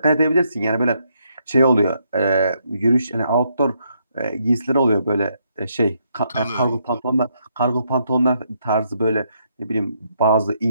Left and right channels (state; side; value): inverted; both; correlation -0.75